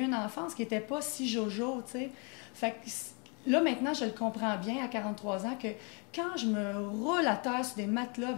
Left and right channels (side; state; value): right; quieter; 34.5 dB